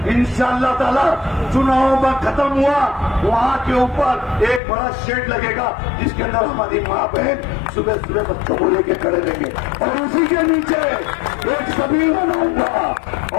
इंशाअल्लाह ताला चुनाव में खत्म हुआ, वहाँ के ऊपर एक बड़ा शेड लगेगा जिसके अंदर हमारी माँ बहन सुबह सुबह बच्चों को लेके खड़े रहेंगे, और उसी के नीचे एक सबील बनाऊंगा,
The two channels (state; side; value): drops out; right; at 4.6 s